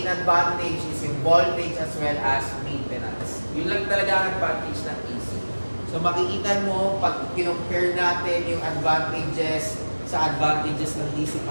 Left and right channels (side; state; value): both; inverted; correlation -1.00